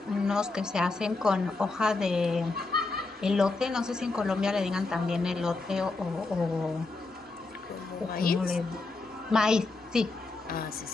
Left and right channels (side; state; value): right; quieter; 3.5 dB